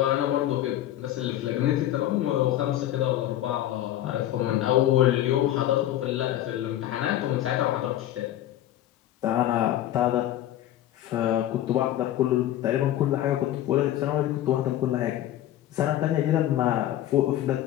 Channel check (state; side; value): quieter; right; 13.0 dB